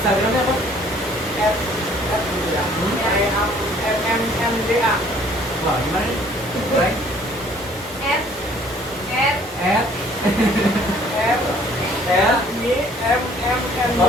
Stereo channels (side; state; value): both; normal; correlation 0.57